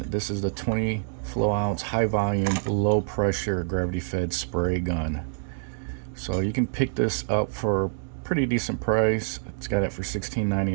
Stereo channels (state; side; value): silent; left; 61 dB below the other